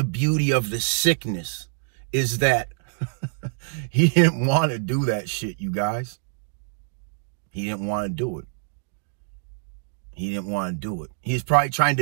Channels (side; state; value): left; silent; digital silence